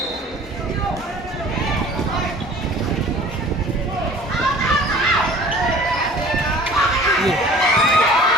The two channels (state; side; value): normal; both; correlation 0.48